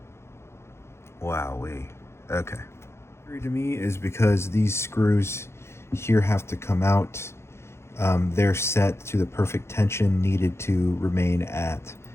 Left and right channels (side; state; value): right; late; 0.13 ms